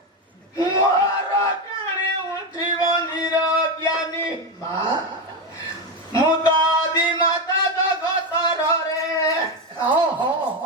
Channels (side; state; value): both; normal; correlation 0.12